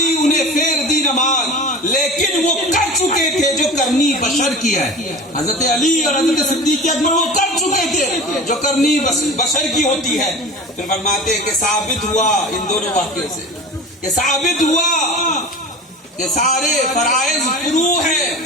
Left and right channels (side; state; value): both; normal; correlation 0.35